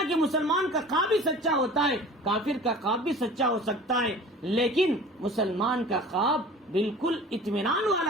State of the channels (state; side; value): normal; both; correlation 0.42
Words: کہ مسلمان کا خواب بھی سچا ہوتا ہے، کافر کا خواب بھی سچا ہو سکتا ہے. لیکن مسلمان کا خواب بالکل اطمینان